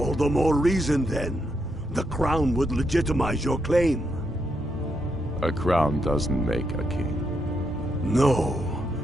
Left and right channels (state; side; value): normal; both; correlation 0.80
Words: the more reason, then. The crown would legitimize your claim. A crown doesn't make a king. No,